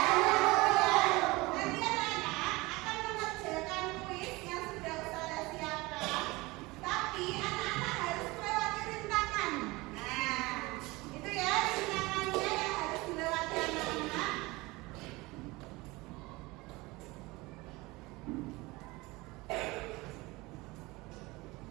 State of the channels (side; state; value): left; quieter; 22.4 dB